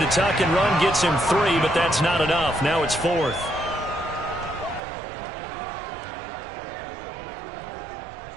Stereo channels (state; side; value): drops out; left; at 4.8 s